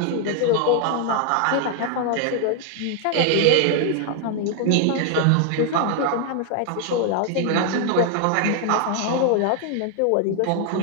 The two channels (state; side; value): different; both; correlation 0.00